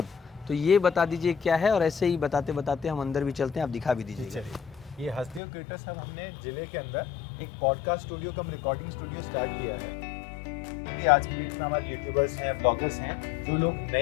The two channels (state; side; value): drops out; right; at 5.4 s